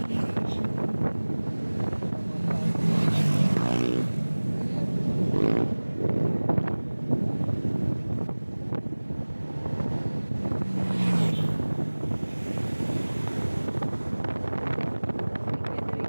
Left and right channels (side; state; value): both; inverted; correlation -1.00